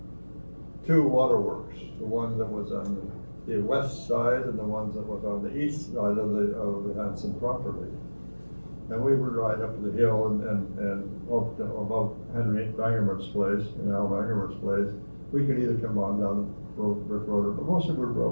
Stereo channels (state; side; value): inverted; both; correlation -1.00